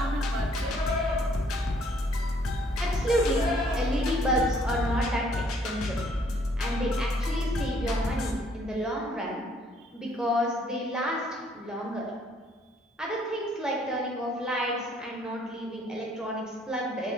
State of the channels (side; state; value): both; normal; correlation 0.64